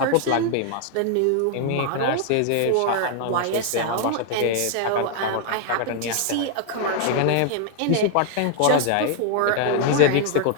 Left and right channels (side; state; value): both; different; correlation 0.00